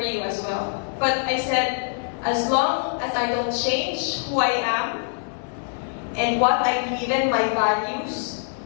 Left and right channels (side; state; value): right; silent; digital silence